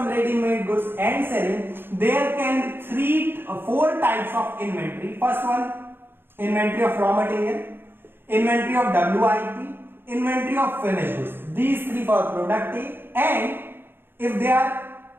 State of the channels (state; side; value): late; left; 0.10 ms